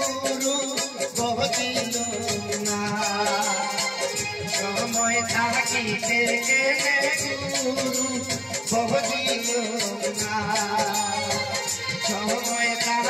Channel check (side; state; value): both; identical; correlation 1.00